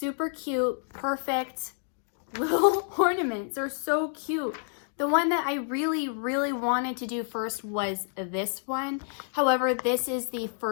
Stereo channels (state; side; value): silent; right; 59 dB below the other